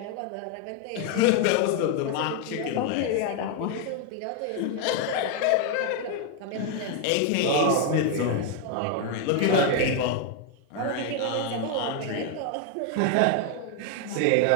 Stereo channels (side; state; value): both; different; correlation 0.01